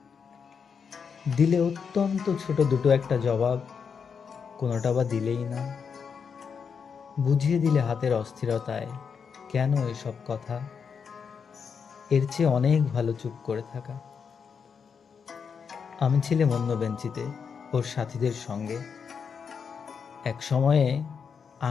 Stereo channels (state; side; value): quieter; right; 6.3 dB